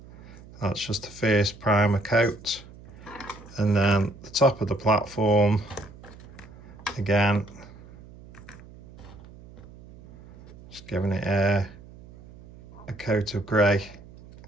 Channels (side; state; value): right; noise; hum, 19 dB below the sound